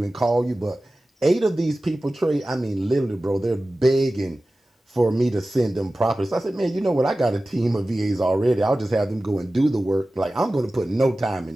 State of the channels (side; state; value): both; normal; correlation 0.96